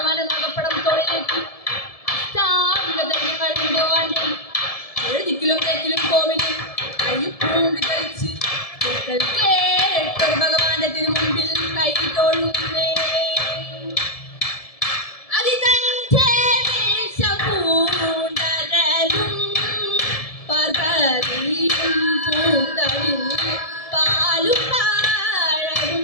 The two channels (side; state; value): right; late; 1.7 ms